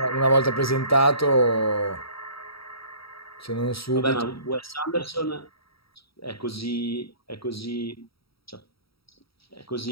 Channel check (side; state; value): right; late; 0.75 ms